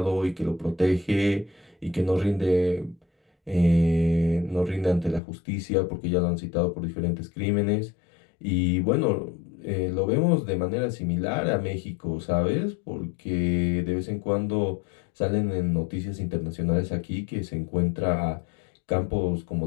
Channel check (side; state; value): right; drops out; at 5.2 s